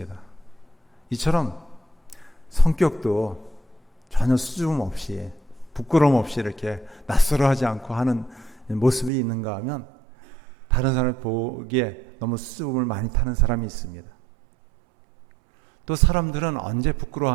이처럼 성격도 전혀 수줍음 없이 부끄러움 없이 이렇게 낯설어하지 않고 하는 모습이 있는가 하면 다른 사람을 보기에 너무 수줍음을 많이 타는 사람이 있습니다. 또 사람들은 언제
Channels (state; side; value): drops out; left; at 9.1 s